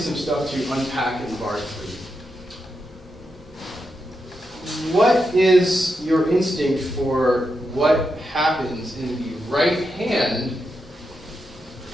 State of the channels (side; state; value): both; normal; correlation 0.86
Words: stuff to unpack in bar 3. What is your instinct for what happens in the right hand?